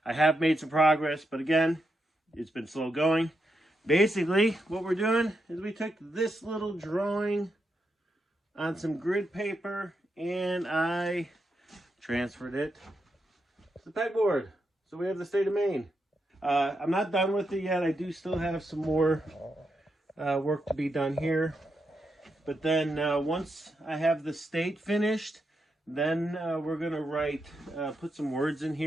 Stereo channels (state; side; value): normal; both; correlation 0.84